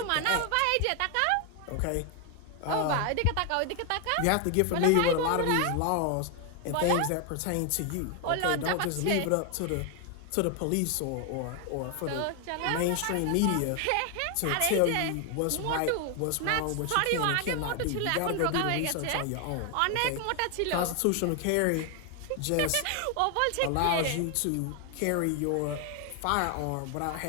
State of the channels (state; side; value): different; both; correlation 0.01